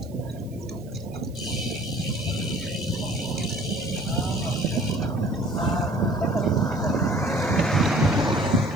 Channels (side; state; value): right; noise; hiss, 26 dB below the sound